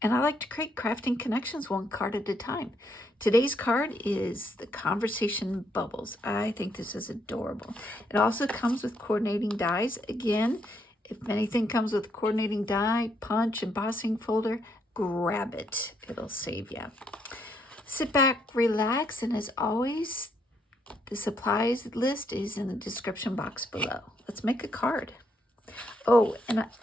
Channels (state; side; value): normal; both; correlation 0.74